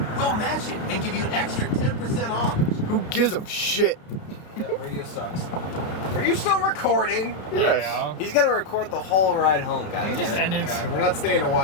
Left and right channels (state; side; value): late; right; 32 ms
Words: We'll match it and give you an extra 10% off. Who gives a shit? Yeah, radio sucks. Are you still recording? Yes. Yeah. He's gonna record the whole ride home, We guys. just ended. God, we're not staying to